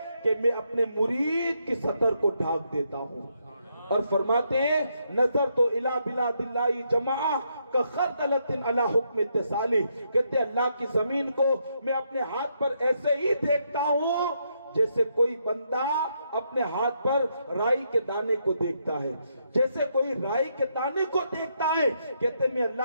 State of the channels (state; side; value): inverted; both; correlation -0.77